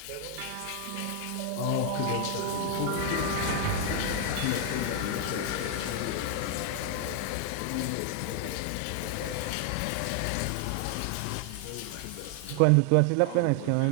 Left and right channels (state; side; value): different; both; correlation 0.00